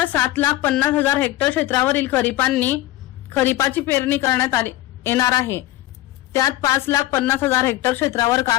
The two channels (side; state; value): right; quieter; 15.7 dB